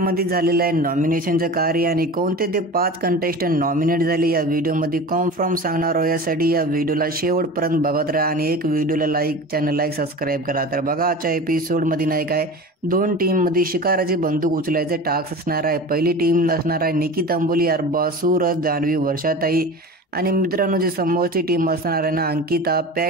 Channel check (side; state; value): both; normal; correlation 0.33